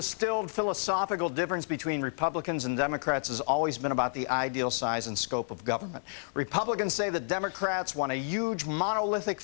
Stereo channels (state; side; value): silent; right; digital silence